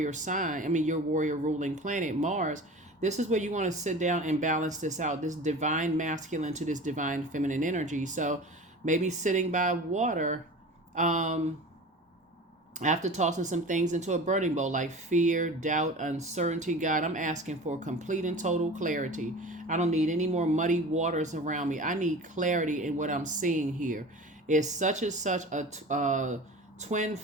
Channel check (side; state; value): both; normal; correlation 0.36